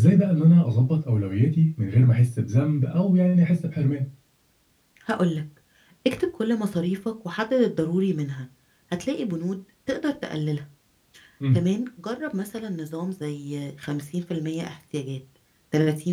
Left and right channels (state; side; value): identical; both; correlation 1.00